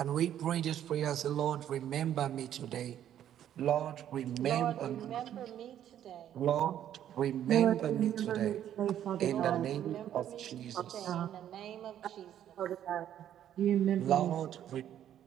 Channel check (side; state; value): left; quieter; 10.7 dB